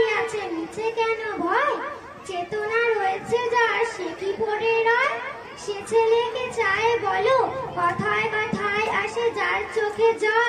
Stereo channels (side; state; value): both; identical; correlation 1.00